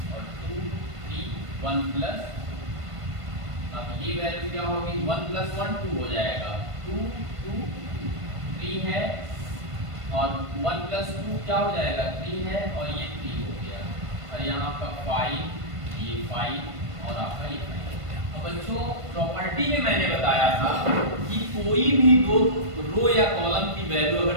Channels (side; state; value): left; late; 1.5 ms